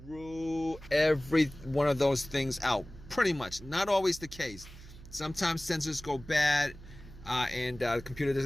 rule every one of those things out. Pretty much. Not always the case. Sometimes sensors go bad and the computer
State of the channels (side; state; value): right; noise; hum, 17 dB below the sound